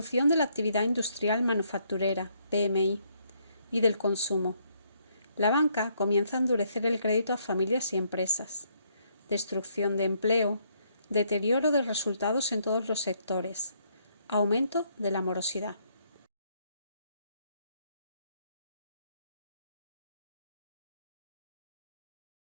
de la actividad industrial manufacturera, PMI, y del consumo. La banca comienza a endurecer el crédito a familias y empresas. Destrucción de empleo, deterioro de resultados en todos los sectores, aumento de la morosidad.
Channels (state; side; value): inverted; both; correlation -0.71